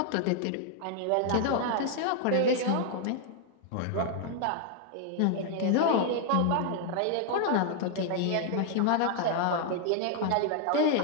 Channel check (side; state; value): both; different; correlation 0.00